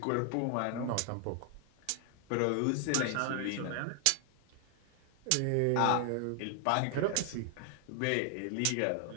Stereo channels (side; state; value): both; different; correlation 0.00